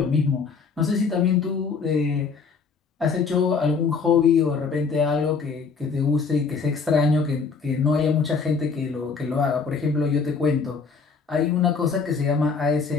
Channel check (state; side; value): quieter; right; 5.1 dB